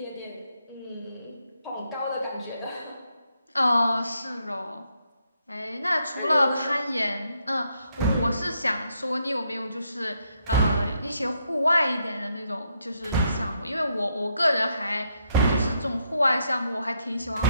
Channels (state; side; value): inverted; both; correlation -0.77